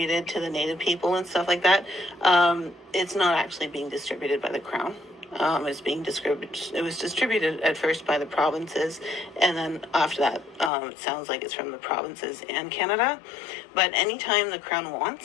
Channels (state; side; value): drops out; right; at 10.7 s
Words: to the Native people and stuff like that, it's not actually being distributed by the Crown. It's being distributed. It was distributed at first by the provinces, and then after that, it sounds like it's from the provinces and Canada. But anytime the Crown